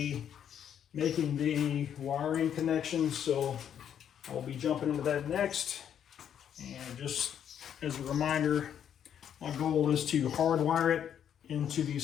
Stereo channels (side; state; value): right; quieter; 9.1 dB